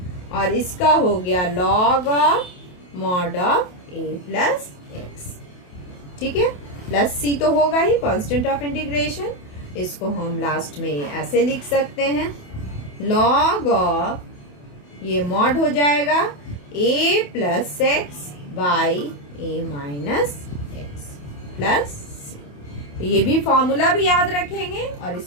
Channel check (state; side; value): late; right; 28 ms